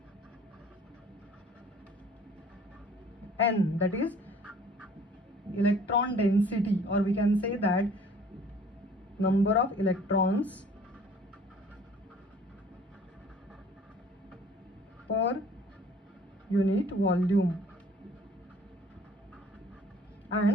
n, that is electron density, or we can say that number of electrons per unit volume.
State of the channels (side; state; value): both; normal; correlation 0.53